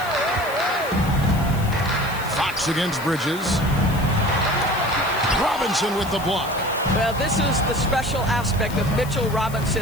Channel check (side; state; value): left; noise; hiss, 16 dB below the sound